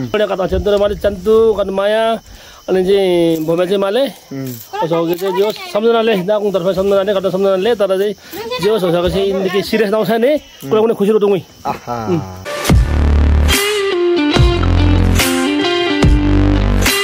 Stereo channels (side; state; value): both; identical; correlation 1.00